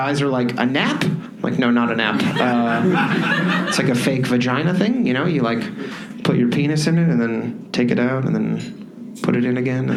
are like, a nap? Like, no, not a nap. It's like a fake vagina thing, you know? You like put your penis in it and then take it out and then put it in again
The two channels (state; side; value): identical; both; correlation 1.00